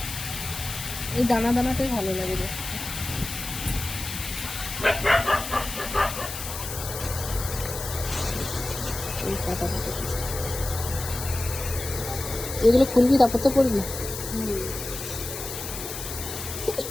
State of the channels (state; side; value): noise; left; hiss, 7 dB below the sound